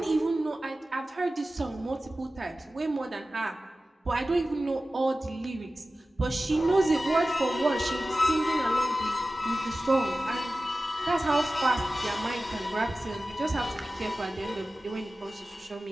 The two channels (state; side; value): normal; both; correlation 0.95